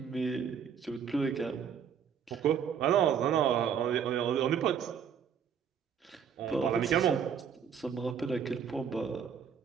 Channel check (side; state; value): left; quieter; 7.6 dB